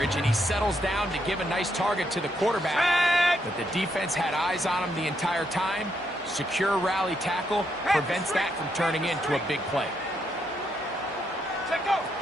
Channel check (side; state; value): both; normal; correlation 0.77